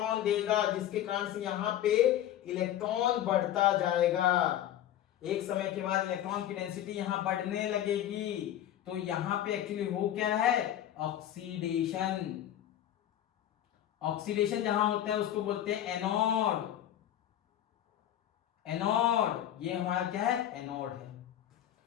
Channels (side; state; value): right; quieter; 11.7 dB